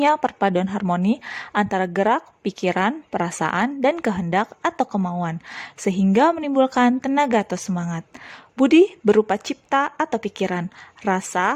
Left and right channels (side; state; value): both; identical; correlation 1.00